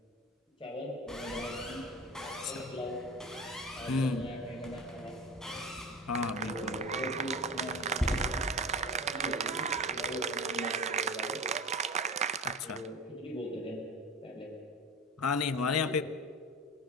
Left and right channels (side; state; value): both; normal; correlation 0.31